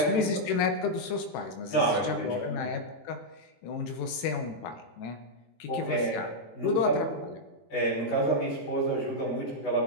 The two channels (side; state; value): right; late; 18 ms